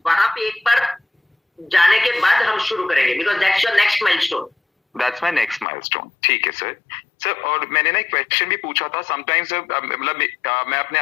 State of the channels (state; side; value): drops out; right; at 5.7 s